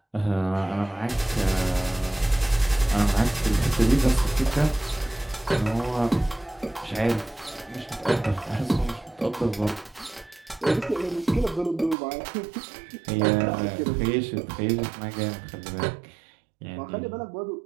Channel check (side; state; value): left; drops out; at 12.0 s